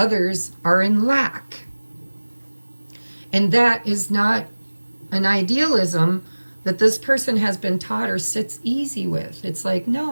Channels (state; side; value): inverted; both; correlation -1.00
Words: are in lack. And that is not an idealism that this person has been taught or sits easy with. It's like,